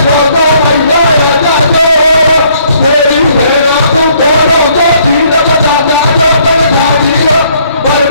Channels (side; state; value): both; inverted; correlation -0.65